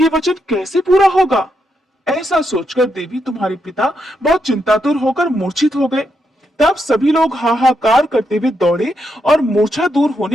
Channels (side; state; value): both; normal; correlation 0.81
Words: वचन कैसे पूरा होगा? ऐसा सोचकर देवी तुम्हारे पिता बहुत चिंतातुर होकर मूर्छित हो गए। तब सभी लोग हाहाकार करते हुए दौड़े और मूर्छा दूर